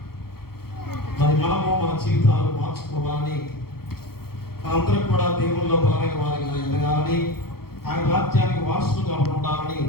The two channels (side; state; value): right; late; 0.94 ms